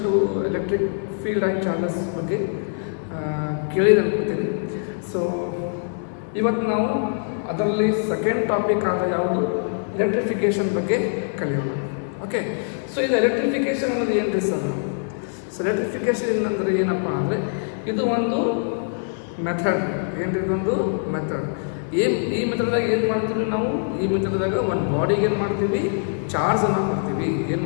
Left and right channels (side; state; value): right; silent; 63 dB below the other